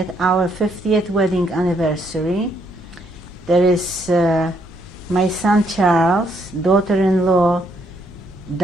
our 50th wedding anniversary. There is my son Charles, daughter-in-law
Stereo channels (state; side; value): normal; both; correlation 0.72